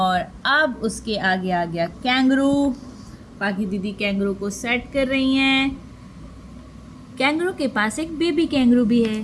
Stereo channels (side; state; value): both; identical; correlation 1.00